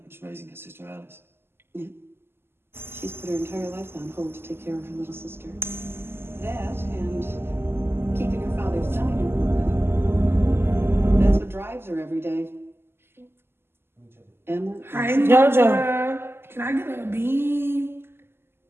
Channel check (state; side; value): late; left; 0.12 ms